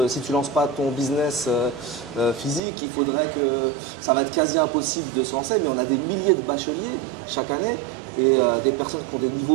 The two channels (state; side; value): drops out; left; at 2.6 s